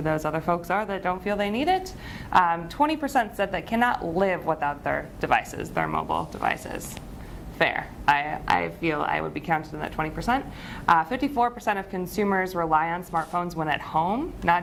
those other folks are that don't feel they need it. 20% said they cannot live without their devices, their mobile devices. Fair. I feel I would be counted in that 20%. 54% of consumers rely on smartphones when at home,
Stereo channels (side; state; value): both; identical; correlation 1.00